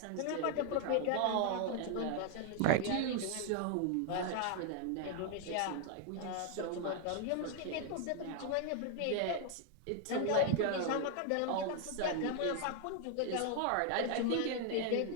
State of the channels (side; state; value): both; different; correlation 0.00